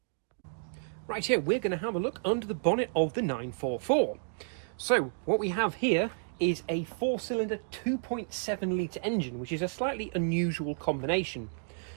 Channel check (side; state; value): left; silent; digital silence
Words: Right here, we're going to have a look under the bonnet of the 944. So what we have here is a 4-cylinder 2.7 litre engine, which is a slightly unusual combination.